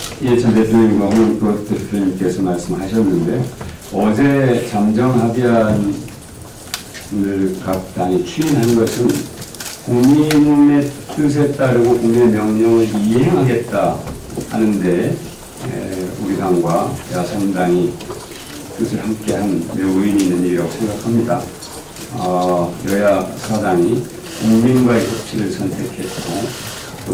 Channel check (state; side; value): identical; both; correlation 1.00